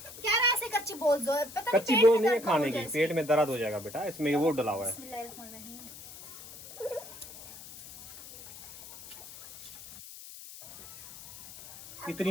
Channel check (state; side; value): noise; left; hiss, 15 dB below the sound